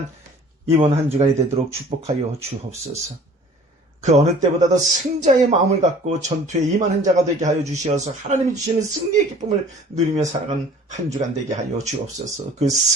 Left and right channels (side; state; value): both; normal; correlation 0.49